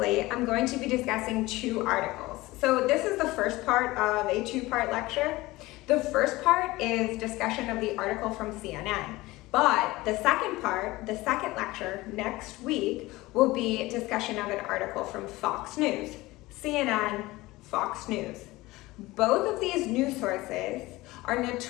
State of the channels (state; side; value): quieter; right; 19.8 dB